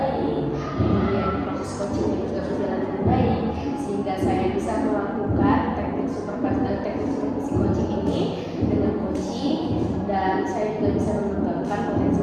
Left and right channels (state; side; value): identical; both; correlation 1.00